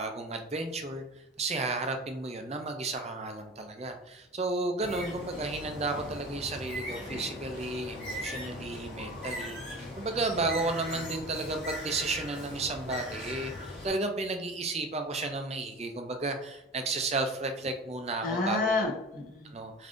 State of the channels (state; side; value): normal; both; correlation 0.35